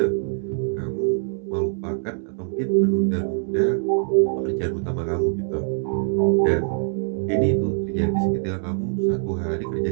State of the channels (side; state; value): left; silent; 63 dB below the other